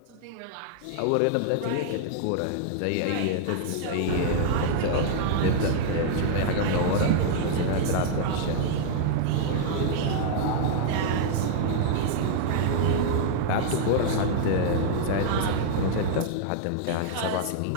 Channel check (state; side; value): different; both; correlation -0.01